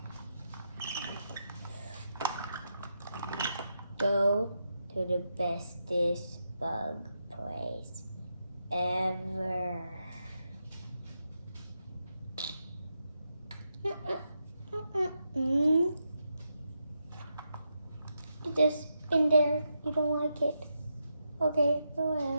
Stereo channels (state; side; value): inverted; both; correlation -0.84